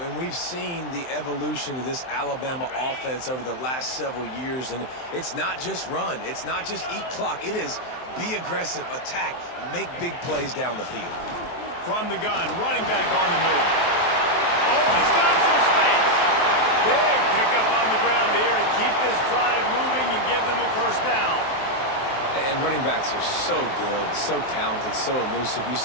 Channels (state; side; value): late; right; 23 ms